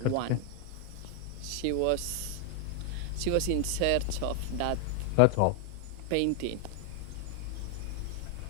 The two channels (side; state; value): both; different; correlation 0.00